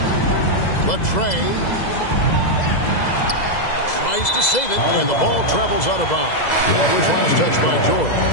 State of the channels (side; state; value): right; late; 2.0 ms